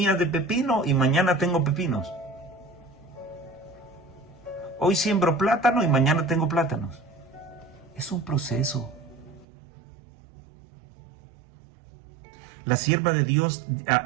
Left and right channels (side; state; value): left; drops out; at 9.5 s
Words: de pepino y mañana tengo pepinos. Hoy siembro plátano y mañana tengo plátanos. Es un proceso. La sierva de Dios,